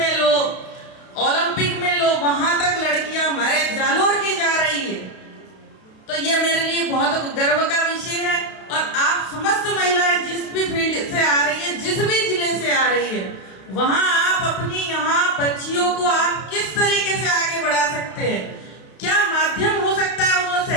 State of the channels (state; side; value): late; right; 32 ms